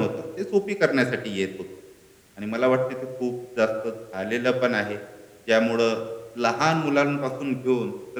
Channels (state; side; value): identical; both; correlation 1.00